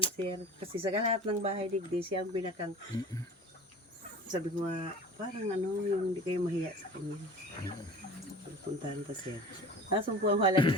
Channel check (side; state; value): both; normal; correlation 0.38